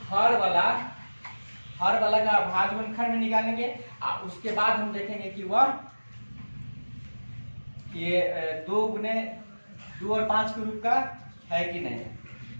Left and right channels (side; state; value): both; inverted; correlation -1.00